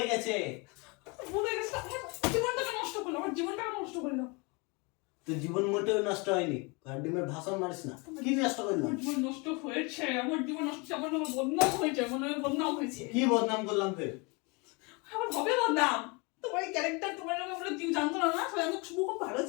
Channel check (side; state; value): right; quieter; 29.4 dB